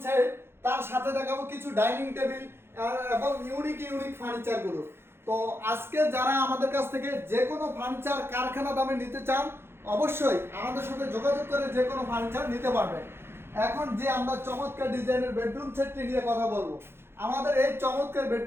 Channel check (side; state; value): left; late; 0.11 ms